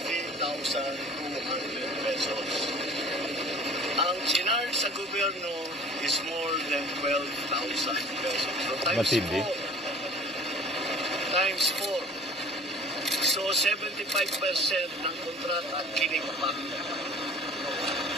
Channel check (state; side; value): normal; both; correlation 0.47